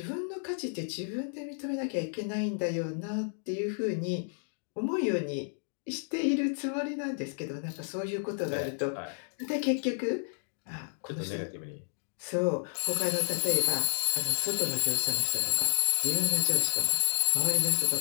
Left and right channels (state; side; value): silent; right; digital silence